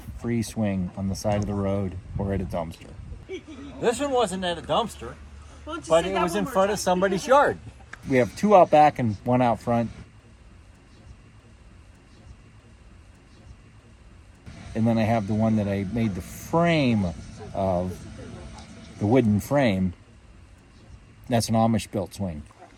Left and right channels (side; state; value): both; identical; correlation 1.00